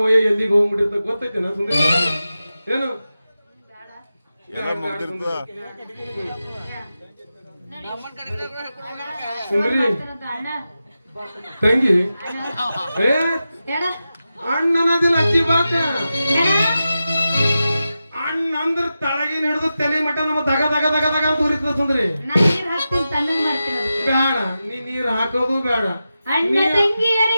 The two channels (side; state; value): both; inverted; correlation -0.92